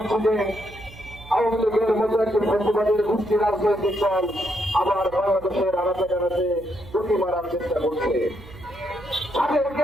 যে আওয়ামী লীগের মতো একটি ফ্যাসিবাদের গোষ্ঠী রাজনৈতিক দল আবার বাংলাদেশের আনাচে কানাচে ঝুঁকি মারার চেষ্টা করছে। তাদেরকে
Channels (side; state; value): right; noise; hum, 19 dB below the sound